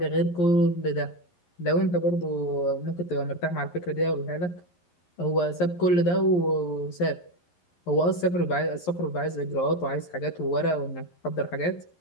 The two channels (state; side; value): late; right; 11 ms